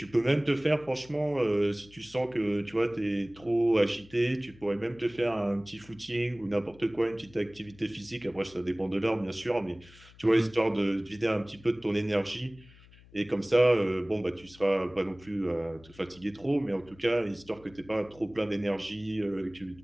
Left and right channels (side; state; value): left; noise; hum, 24 dB below the sound